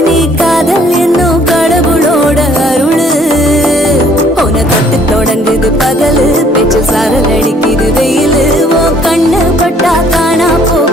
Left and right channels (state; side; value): normal; both; correlation 0.60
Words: நீ காதல் என்னும் கடவுளோட அருளு உன தொட்டு தொடங்குது பகலு பேச்சு சாரல் அடிக்குது வெயிலு ஓ கண்ணு பட்டா காணா